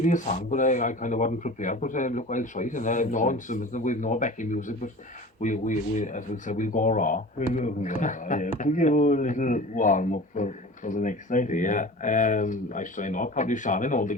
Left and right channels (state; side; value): normal; both; correlation 0.38